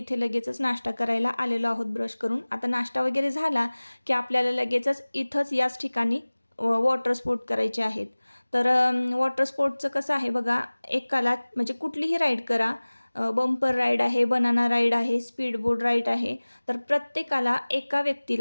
लगेचच नाश्ता करायला आलेलो आहोत ब्रश करून. आता नाश्ता वगैरे झाला की आपल्याला लगेचच इथंच याच ठिकाणी वॉटर स्पोर्ट करायचे आहेत. तर वॉटर स्पोर्टचं कसं आहे बघा, एकाला म्हणजे कुठलीही राईड करा, बंपर राईड आहे, बनाना राईड आहे, स्पीड बोट राईड आहे. तर प्रत्येकाला एका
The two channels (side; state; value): both; inverted; correlation -1.00